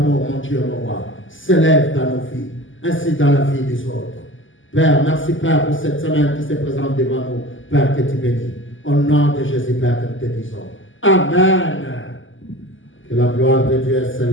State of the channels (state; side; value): late; right; 0.57 ms